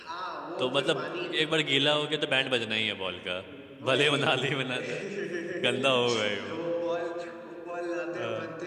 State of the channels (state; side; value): identical; both; correlation 1.00